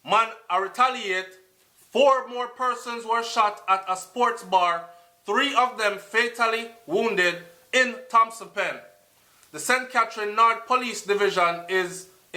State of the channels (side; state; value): both; identical; correlation 1.00